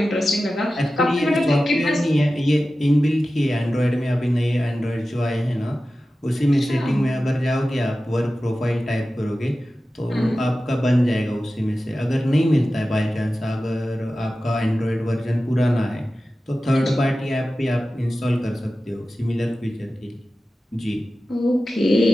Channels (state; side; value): normal; both; correlation 0.94